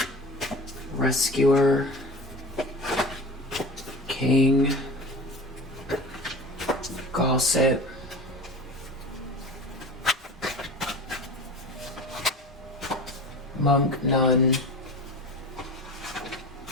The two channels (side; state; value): both; normal; correlation 0.34